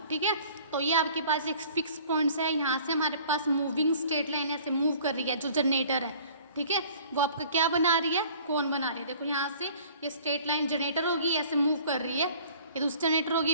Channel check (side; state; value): both; inverted; correlation -0.51